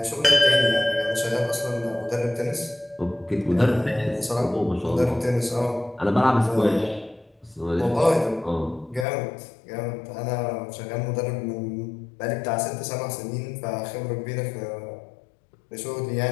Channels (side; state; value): right; drops out; at 9.1 s